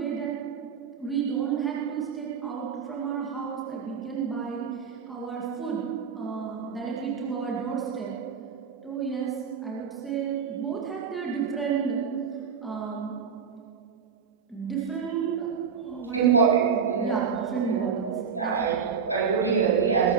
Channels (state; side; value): quieter; left; 6.5 dB